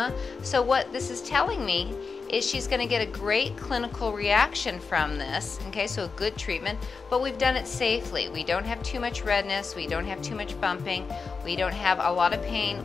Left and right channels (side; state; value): right; quieter; 4.9 dB